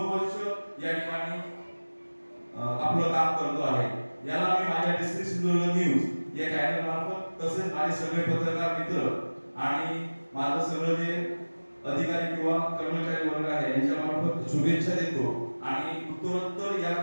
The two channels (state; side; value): inverted; both; correlation -1.00